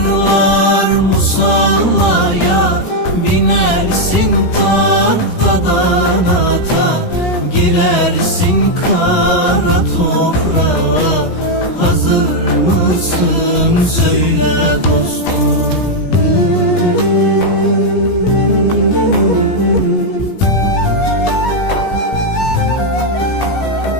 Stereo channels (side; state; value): right; late; 17 ms